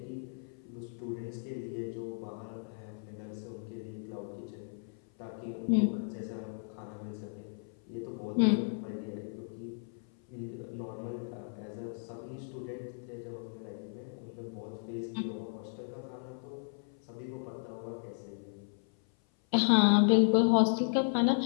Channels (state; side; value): silent; right; 55 dB below the other